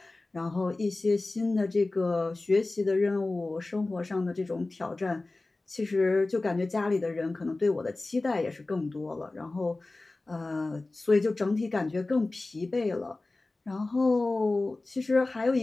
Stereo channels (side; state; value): right; quieter; 3.1 dB